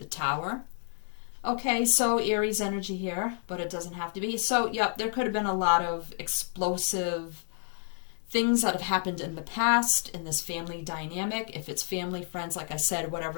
Tower. Okay, so Aries energy here, but it doesn't have to be. So, yep, there could have been a lot of explosive things that have happened in the past in this family dynamic. If it's family, friends, like I said,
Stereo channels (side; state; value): right; silent; 58 dB below the other